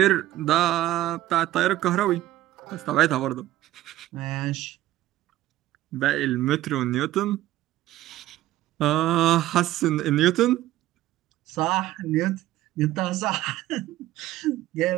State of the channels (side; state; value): left; quieter; 14.9 dB